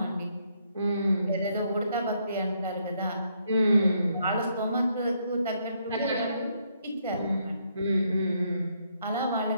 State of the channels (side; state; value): both; inverted; correlation -0.73